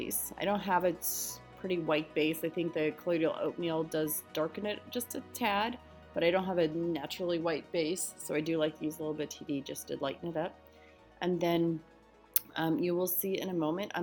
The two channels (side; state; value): both; identical; correlation 1.00